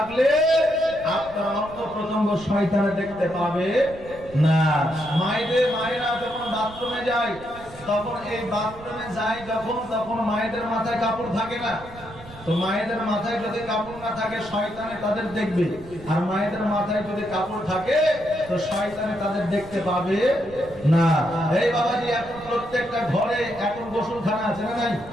আপনার অঙ্গ প্রত্যঙ্গ শয়তানে দেখতে পাবে না। মায়েরা যখন বাথরুমে যায় তখন এই বাথরুমে যায় যখন, তখন মায়েদের মাথায় কাপড় থাকে না। তো মায়েদের মাথায় যদি কাপড় না থাকে শয়তানে তাদের দেখবে, আর মায়েদের মাথায় যদি কাপড় থাকে তো শয়তানে তাদের দেখতে পাবে না। এই বাবাজি, এখন প্রত্যেকটা ঘরে এখন গোসলখানা আছে না নাই?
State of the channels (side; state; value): right; noise; rumble, 19 dB below the sound